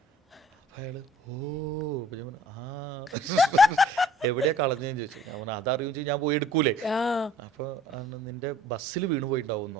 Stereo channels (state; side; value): normal; both; correlation 0.54